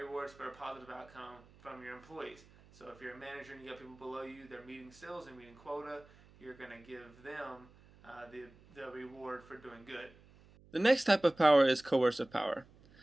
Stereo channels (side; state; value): right; noise; hum, 25 dB below the sound